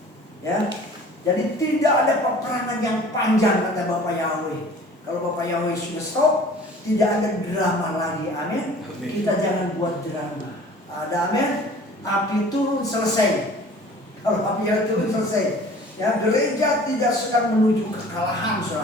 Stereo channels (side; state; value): both; normal; correlation 0.47